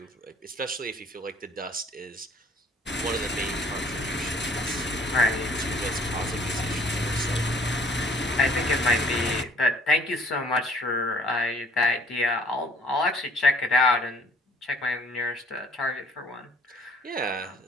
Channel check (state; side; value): normal; both; correlation 0.56